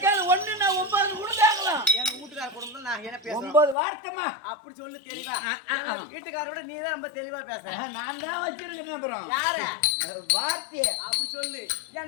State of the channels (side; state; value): right; drops out; at 3.8 s